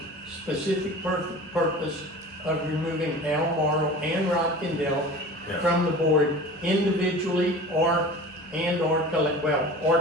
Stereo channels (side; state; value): both; normal; correlation 0.38